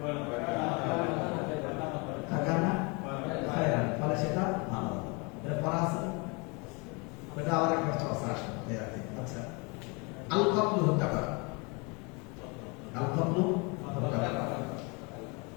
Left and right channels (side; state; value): right; quieter; 30.0 dB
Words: হাকানা খায়রা, ফলে সেটা ভালো হলো। এটা পড়া আছে, এটা আবার একটা চর্চা আসবে। আচ্ছা, আল কতলু হত্যা করা, আল কতলু হত্যা করা,